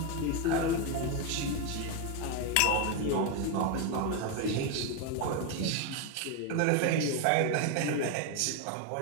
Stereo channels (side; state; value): both; different; correlation 0.02